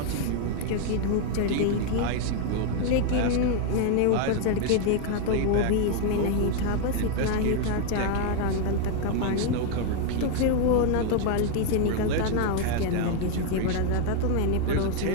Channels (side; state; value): both; different; correlation 0.01